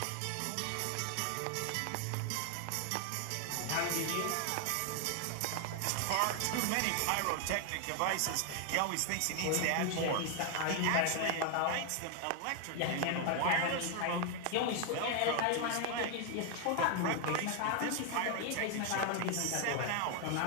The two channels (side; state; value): both; different; correlation 0.00